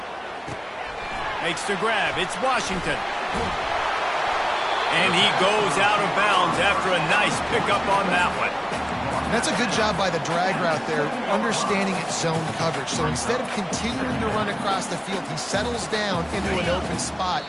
Makes the grab. It's Washington. And he goes out of bounds after a nice pickup on that one. That's a good job by the drag route there, understanding its zone coverage. So instead of continuing to run across the field, he settles down into an open spot,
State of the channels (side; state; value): both; identical; correlation 1.00